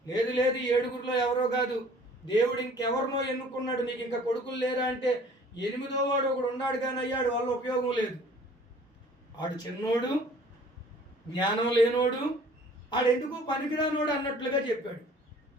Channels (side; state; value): both; normal; correlation 0.51